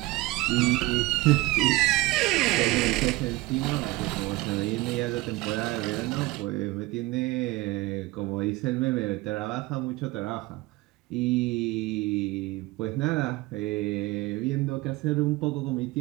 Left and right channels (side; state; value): left; quieter; 20.4 dB